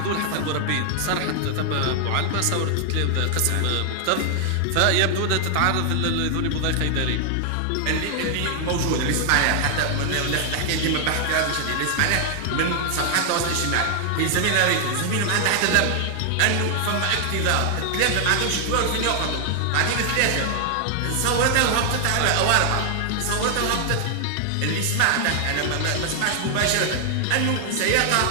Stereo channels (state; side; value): different; both; correlation 0.00